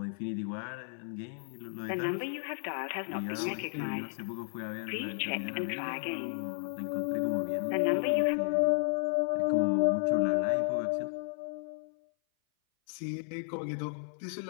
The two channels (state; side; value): silent; right; 56 dB below the other